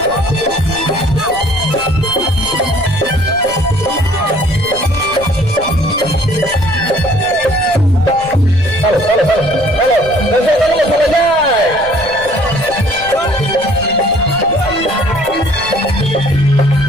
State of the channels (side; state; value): left; noise; rumble, 16 dB below the sound